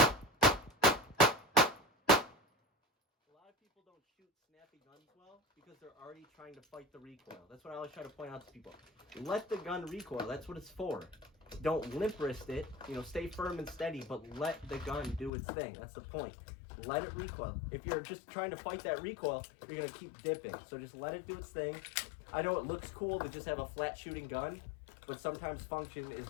A lot of people don't shoot snappy guns well because they're already trying to fight the recoil. That's what I always try to point out to people. Let the gun recoil. That's what it's for. Don't limp wrist it. Stay firm and steady, but let the gun do its thing. That's the point. Let it recoil. If you're just trying to fight that recoil, you're going to keep dipping. So just let it do its thing. I know it looks cool to just have a flat shooting gun, but sometimes function is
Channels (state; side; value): drops out; right; at 15.3 s